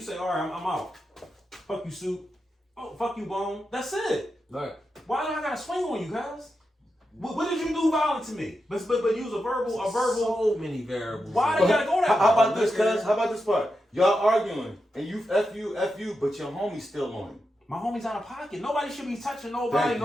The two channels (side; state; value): both; normal; correlation 0.88